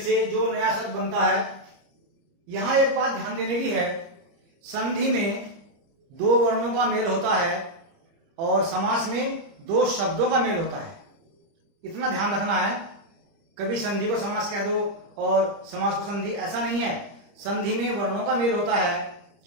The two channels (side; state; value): left; late; 30 ms